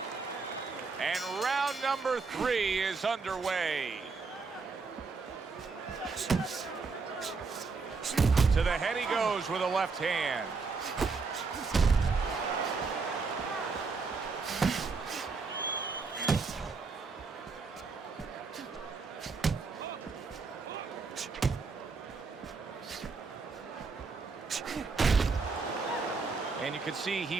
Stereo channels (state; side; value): quieter; left; 4.5 dB